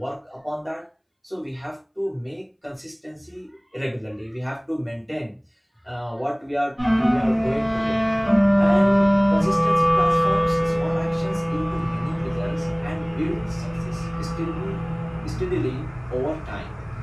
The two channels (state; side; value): identical; both; correlation 1.00